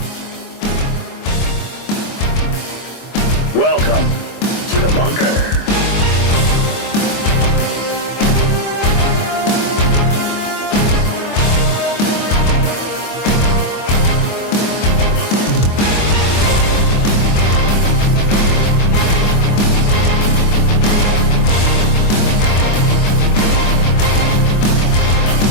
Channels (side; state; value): right; late; 24 ms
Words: Welcome to the bunker.